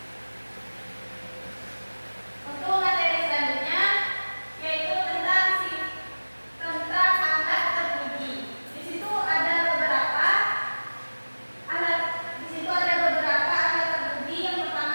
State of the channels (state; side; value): inverted; both; correlation -1.00